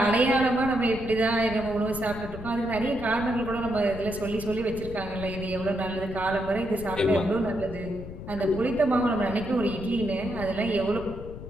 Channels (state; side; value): noise; left; rumble, 11 dB below the sound